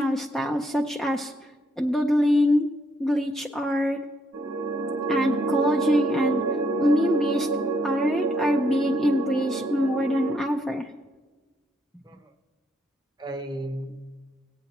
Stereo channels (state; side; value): normal; both; correlation 0.73